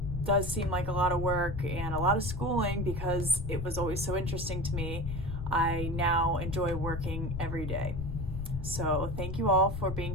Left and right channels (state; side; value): noise; left; rumble, 6 dB below the sound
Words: does seem like a lot of work and a lot of schooling because it was always so interesting to me, I now enjoy working every day. So thank you all for being